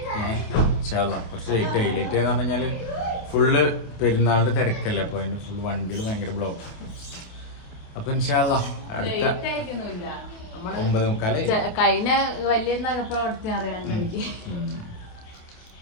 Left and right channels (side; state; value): right; late; 28 ms